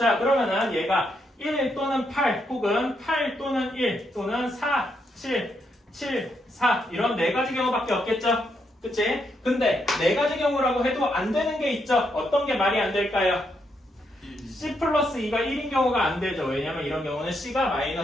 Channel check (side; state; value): both; normal; correlation 0.78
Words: 그러면은 얘가 1 또는 8 혹은 8 또는 1 또는 4, 7, 4 이런 네 가지 경우밖에 없겠죠? 그치? 근데 네 가지 경우라고 해도 안 되는 게 있죠? 어떤 게 말이 안 될까요? C 플러스 2가 1인 경우가 안 되죠. 왜냐면 이런 경우는 C가